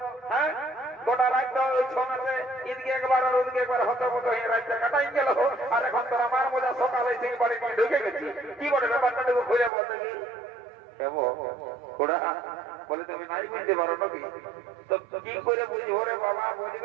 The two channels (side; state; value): left; drops out; at 9.7 s